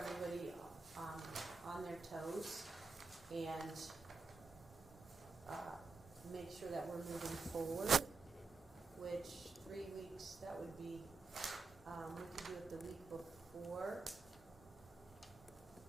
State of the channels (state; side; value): quieter; left; 4.2 dB